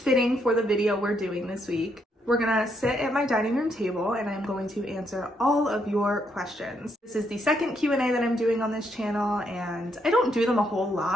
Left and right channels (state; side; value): normal; both; correlation 0.75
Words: for the video we're doing this week. We're gonna sit at my dining room table and I'm going to answer all of your questions. This is the second Q&A that I'm doing on this channel and I don't do them a whole